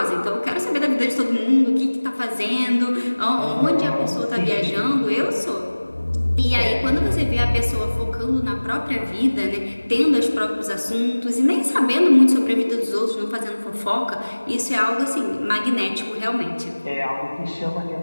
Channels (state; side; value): inverted; both; correlation -1.00